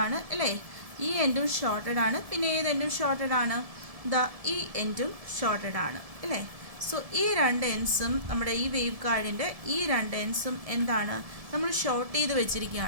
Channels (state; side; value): late; left; 1.7 ms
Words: ആണ് അല്ലേ? ഈ എൻഡും ഷോർട്ടഡ് ആണ്. പിന്നെ ഏത് എൻഡും ഷോർട്ടഡ് ആണ്? ഈ എൻഡും ഷോർട്ടഡ് ആണ് അല്ലേ? സോ ഈ രണ്ട് എൻഡ്സും നമ്മുടെ ഈ വേവ് ഗൈഡിൻ്റെ ഈ രണ്ട് എൻഡ്സും എന്താണ്? നമ്മൾ ഷോർട്ട് ചെയ്ത്